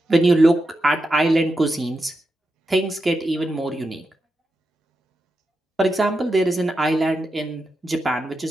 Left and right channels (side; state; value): both; normal; correlation 0.88